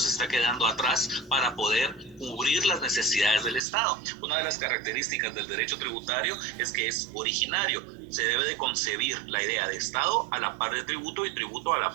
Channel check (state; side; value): drops out; left; at 3.6 s